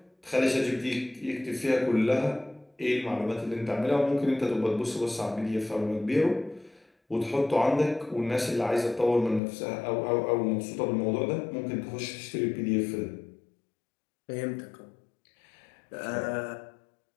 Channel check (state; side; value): drops out; right; at 9.4 s